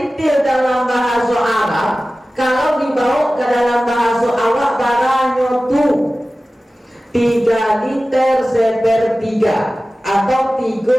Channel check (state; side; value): normal; both; correlation 0.96